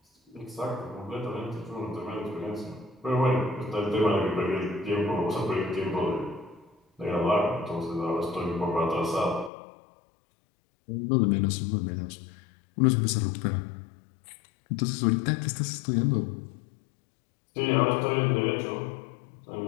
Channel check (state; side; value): drops out; right; at 9.5 s